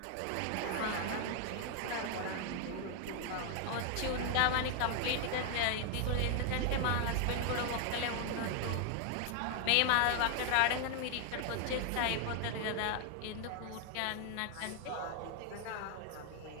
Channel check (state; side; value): different; both; correlation 0.00